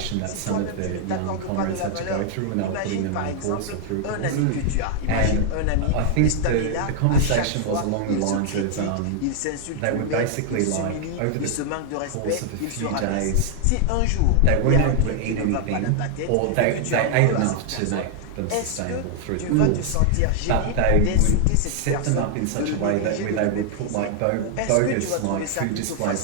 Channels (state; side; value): different; both; correlation 0.00